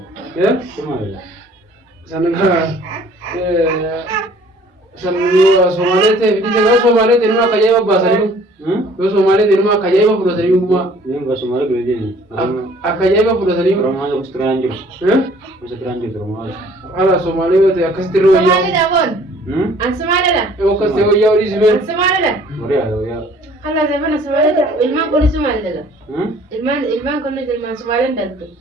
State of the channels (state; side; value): normal; both; correlation 0.55